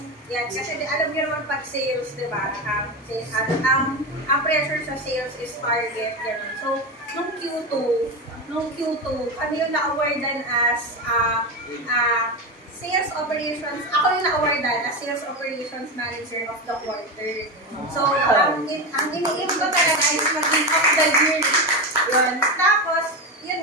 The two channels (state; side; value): normal; both; correlation 0.17